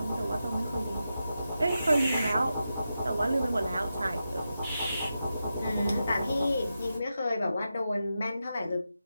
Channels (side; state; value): both; inverted; correlation -0.89